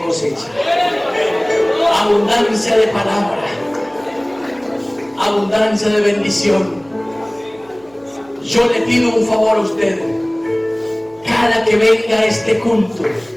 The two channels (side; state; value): right; noise; hum, 29 dB below the sound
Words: abundancia de palabra, abundancia de bendición. Yo le pido un favor a usted: cada que venga a este culto,